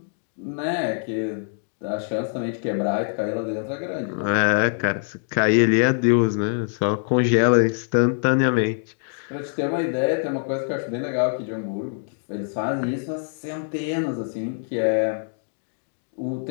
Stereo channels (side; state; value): right; silent; digital silence